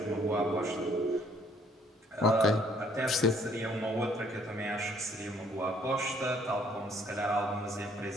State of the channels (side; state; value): both; normal; correlation 0.63